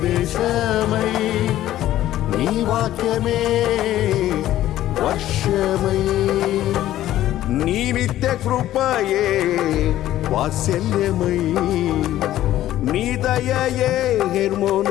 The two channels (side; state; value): right; quieter; 13.6 dB